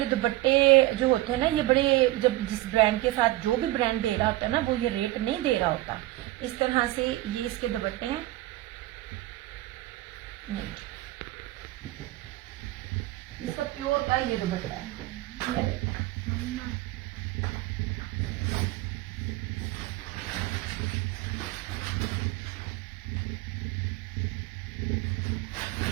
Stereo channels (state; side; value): quieter; left; 17.5 dB